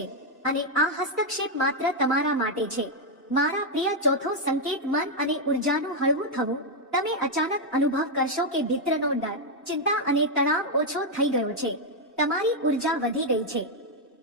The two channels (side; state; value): both; normal; correlation 0.00